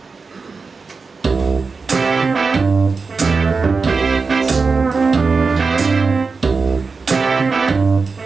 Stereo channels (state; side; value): quieter; left; 4.6 dB